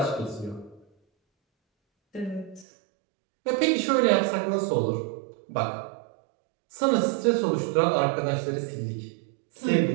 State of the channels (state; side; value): drops out; left; at 2.7 s